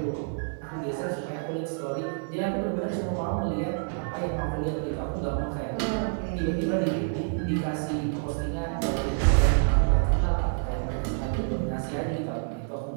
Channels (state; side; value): silent; left; 59 dB below the other